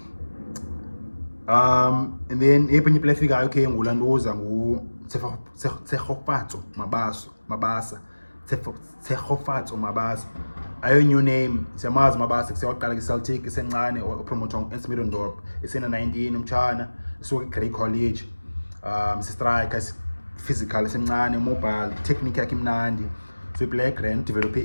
And then epenye play fika okay ngulanduza ngu Tshegofatso Mabasa Tshegofatso Mabasa. Ayo new name, siyamazi Mabasa kusiyaqala ku-Celtic isencane opromoter eSmidondorp isena 19 umtshana suka eGrey College. Si-striker physical esencane mobile technique yakhe imnandi. So i-play grand develop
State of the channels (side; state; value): both; inverted; correlation -1.00